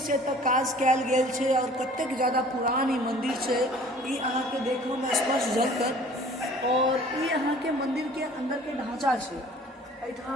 से एतऽ काज कयल गेल छे और कतेक ज्यादा पुरान ई मंदिर छे ई अहाँ के देखो में स्पष्ट झलकत। और ई अहाँ के मंदिर के अंदर के ढांचा छे।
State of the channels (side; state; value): both; normal; correlation 0.50